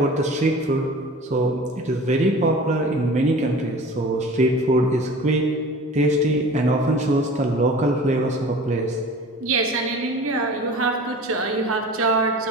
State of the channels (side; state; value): both; normal; correlation 0.41